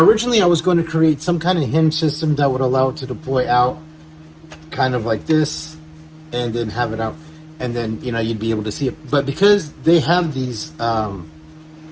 originally I was going to create some kind of hinge system that would allow it to deploy out kind of like this, and then have it out, and then, you know, you'd be able to see it. But because they have these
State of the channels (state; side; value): identical; both; correlation 1.00